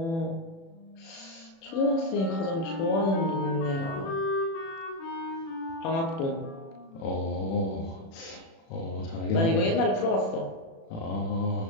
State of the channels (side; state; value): right; late; 36 ms